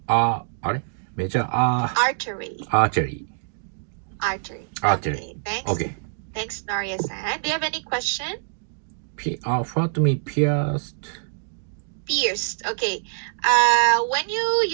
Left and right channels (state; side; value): silent; left; digital silence